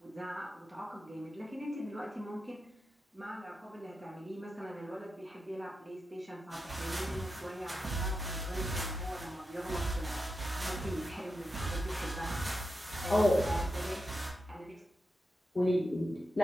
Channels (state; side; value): normal; both; correlation 0.89